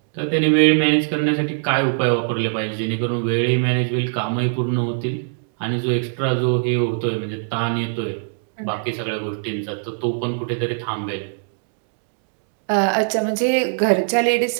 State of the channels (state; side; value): silent; left; digital silence